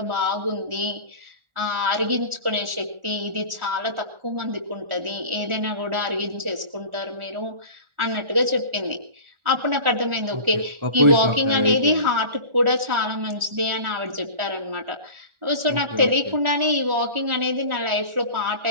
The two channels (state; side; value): late; left; 1.4 ms